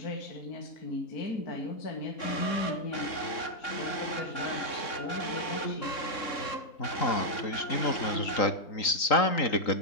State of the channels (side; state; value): right; late; 3.6 ms